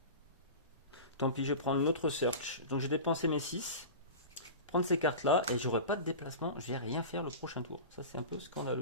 Tant pis, je vais prendre une autre search. Donc j'ai dépensé mes 6. Prendre ces cartes-là et j'aurai pas de déplacement. Je vais rien faire le prochain tour. Ça, c'est un peu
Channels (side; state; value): both; inverted; correlation -0.30